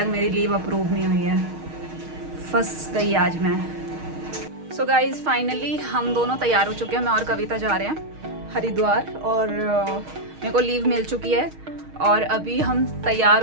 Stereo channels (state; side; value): late; left; 6.4 ms